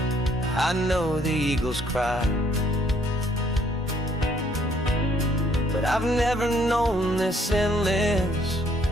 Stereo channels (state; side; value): normal; both; correlation 0.66